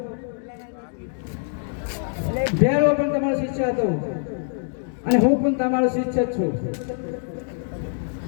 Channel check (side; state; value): right; silent; digital silence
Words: ભેરો પણ તમારો શિષ્ય હતો અને હું પણ તમારો શિષ્ય જ છું,